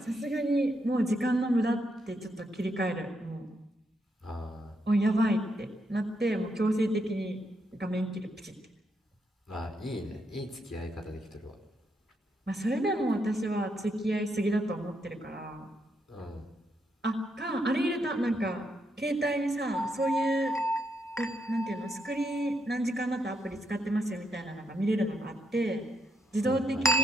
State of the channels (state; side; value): normal; both; correlation 0.79